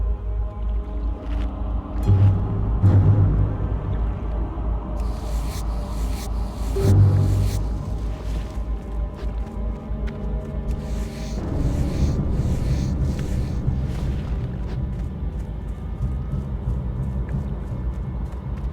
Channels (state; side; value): identical; both; correlation 1.00